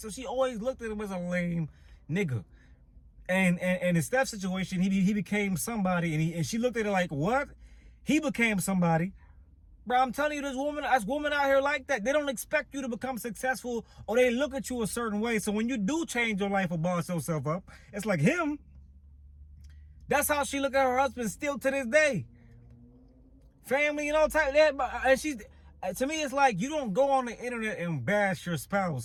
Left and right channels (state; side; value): identical; both; correlation 1.00